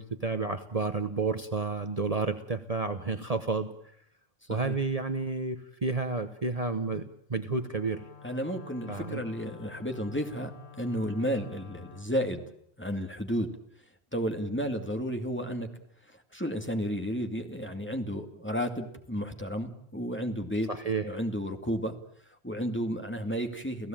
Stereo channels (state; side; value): normal; both; correlation 0.27